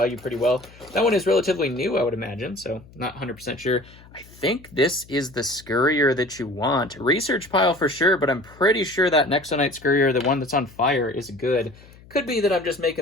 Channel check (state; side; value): noise; left; hum, 23 dB below the sound